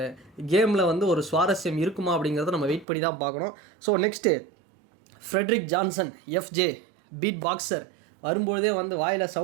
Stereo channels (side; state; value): left; drops out; at 2.9 s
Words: கேமில் வந்து ஒரு சுவாரஸ்யம் இருக்குமா அப்படிங்கிறத நம்ம வெயிட் பண்ணி தான் பார்க்கணும். So next Frederick Johnson, FJ beat boxer. வரும்பொழுதே வந்து வாயில்